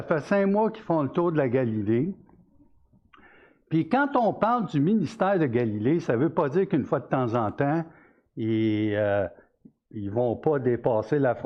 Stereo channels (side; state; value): both; identical; correlation 1.00